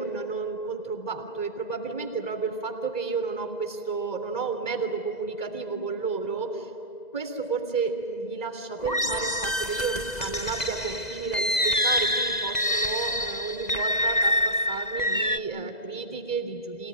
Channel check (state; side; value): late; right; 2.0 ms